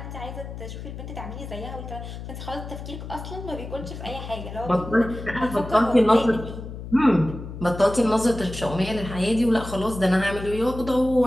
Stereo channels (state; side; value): noise; left; hum, 10 dB below the sound